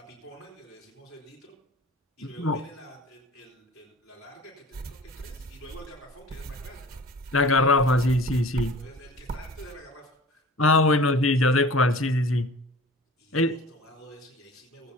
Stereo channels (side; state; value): both; normal; correlation 0.43